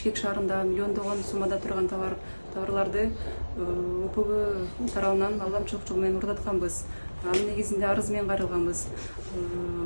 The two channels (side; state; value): both; inverted; correlation -1.00